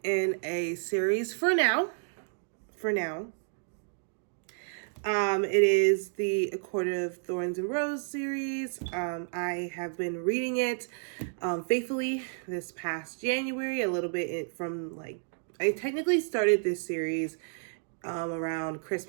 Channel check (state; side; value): silent; left; digital silence